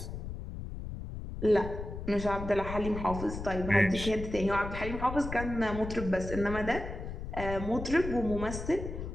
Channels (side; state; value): left; noise; rumble, 7 dB below the sound